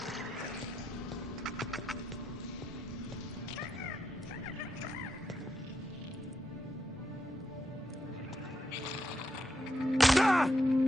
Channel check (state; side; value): normal; both; correlation 0.83